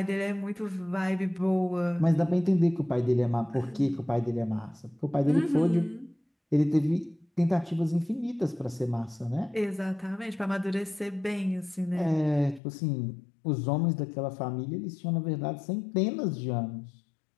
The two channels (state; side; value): drops out; right; at 12.6 s